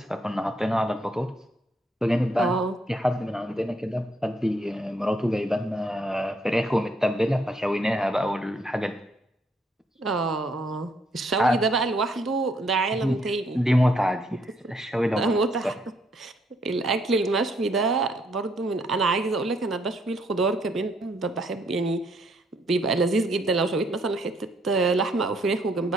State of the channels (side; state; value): both; normal; correlation 0.71